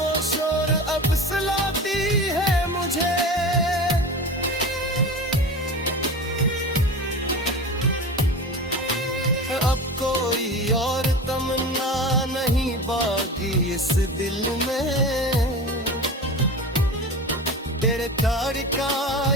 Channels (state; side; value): normal; both; correlation 0.31